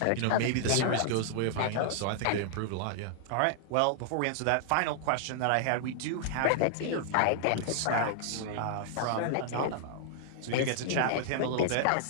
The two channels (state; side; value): different; both; correlation -0.01